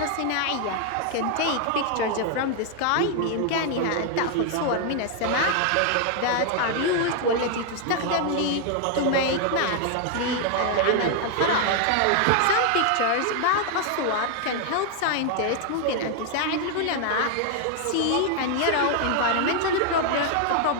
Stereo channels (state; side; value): different; both; correlation 0.00